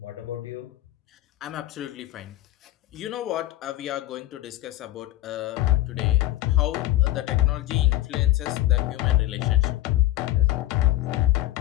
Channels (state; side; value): quieter; right; 15.2 dB